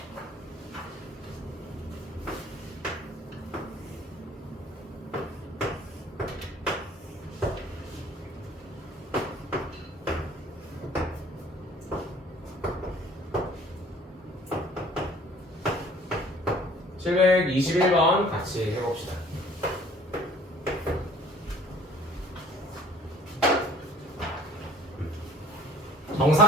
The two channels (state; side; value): normal; both; correlation 0.53